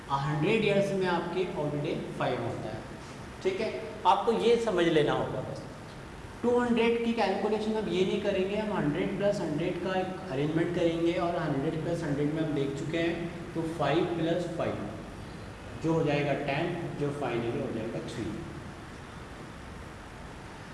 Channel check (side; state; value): both; identical; correlation 1.00